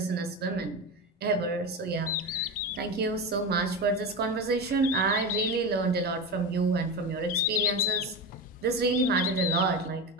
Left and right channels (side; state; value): both; normal; correlation 0.21